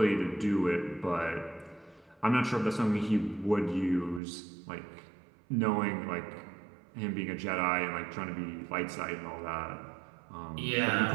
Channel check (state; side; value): drops out; left; at 4.2 s